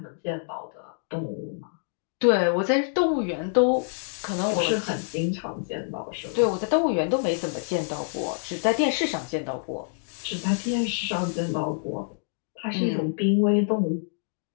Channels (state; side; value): silent; right; digital silence